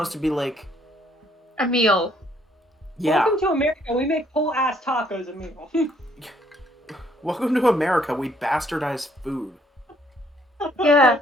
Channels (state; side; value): normal; both; correlation 0.66